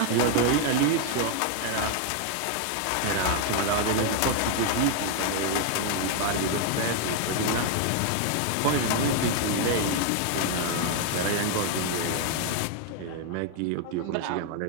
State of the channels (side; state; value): both; different; correlation 0.00